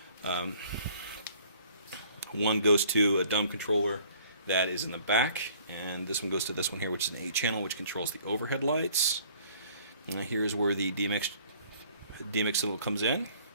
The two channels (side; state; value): both; inverted; correlation -0.56